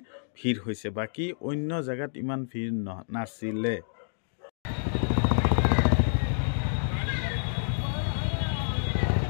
ভিৰ হৈছে বাকী অন্য জেগাত ইমান ভিৰ নাছিলে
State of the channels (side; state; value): right; silent; digital silence